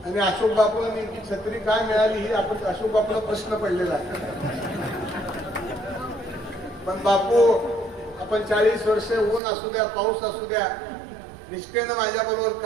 आणि अशोक बापूला नेमकी छत्री काय मिळाली ही आपण अशोक बापूला प्रश्न पडलेला आहे. पण बापू, आपण 40 वर्षे ऊन असू द्या, पाऊस असू द्या, निष्ठेनं माझ्या बरोबर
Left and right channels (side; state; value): left; drops out; at 9.4 s